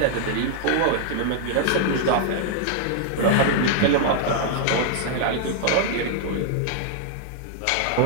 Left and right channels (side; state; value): both; different; correlation 0.00